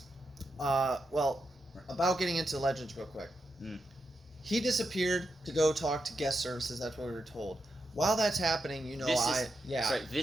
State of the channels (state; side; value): normal; both; correlation 0.86